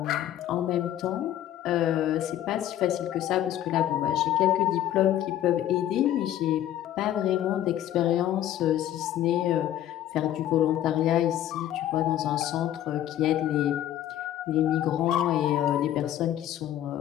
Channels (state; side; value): quieter; right; 12.0 dB